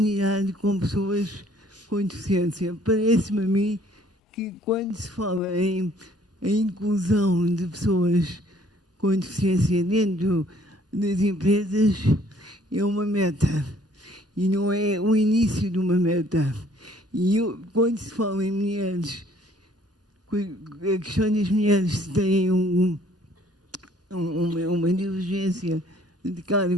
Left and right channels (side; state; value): both; normal; correlation 0.60